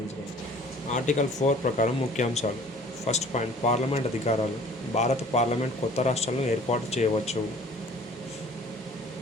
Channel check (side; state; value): both; normal; correlation 0.50